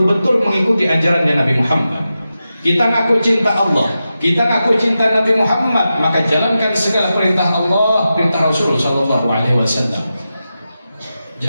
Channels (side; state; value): both; inverted; correlation -0.91